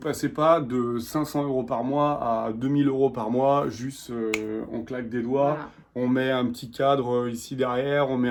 passez pas de 500 euros par mois à 2000 euros par mois, juste on claque des doigts, on met un petit cadre ici derrière, on met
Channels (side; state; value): both; identical; correlation 1.00